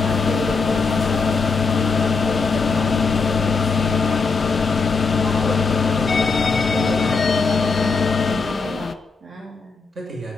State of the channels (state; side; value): quieter; right; 4.5 dB